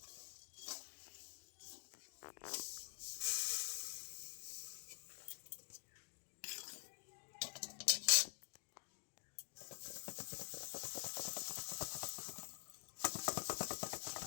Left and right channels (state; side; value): silent; right; digital silence